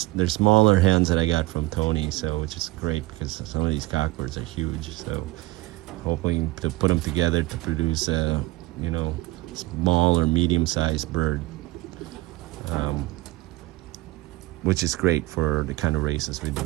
smaller hens that I got from Tony, so which is great because some of these cockbirds are huge. So hoping to put them together to produce a, you know, small or medium-sized bird, which is great for the kind of races we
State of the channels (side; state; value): left; quieter; 20.3 dB